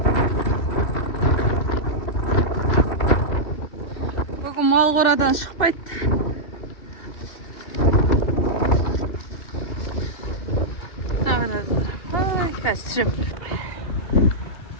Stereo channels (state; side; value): late; right; 2.6 ms